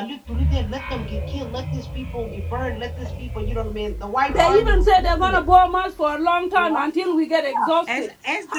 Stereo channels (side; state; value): both; identical; correlation 1.00